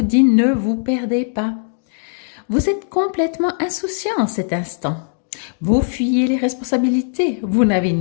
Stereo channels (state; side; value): silent; right; digital silence